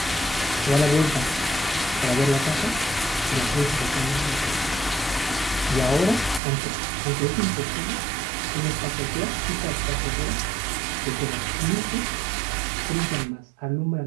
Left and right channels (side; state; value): left; drops out; at 6.4 s